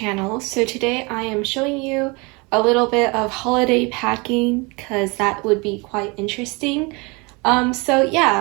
So today I am showing you a little bit of holiday packing because that would be quite interesting. So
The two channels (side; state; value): left; quieter; 27.9 dB